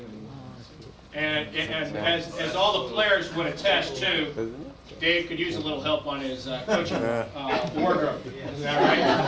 And as all the players would attest to, Dave could use a little help on his coaching wardrobe. Is that right?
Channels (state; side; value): identical; both; correlation 1.00